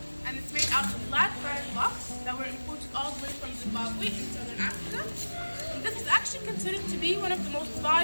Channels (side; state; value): both; inverted; correlation -1.00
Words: and it's made out of black granite blocks that were imported all the way from Zimbabwe in southern Africa. And this is actually considered to be one of the most